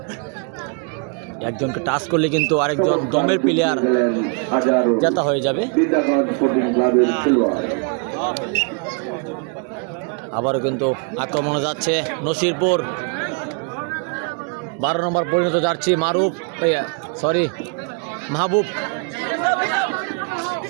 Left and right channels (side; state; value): left; quieter; 38.0 dB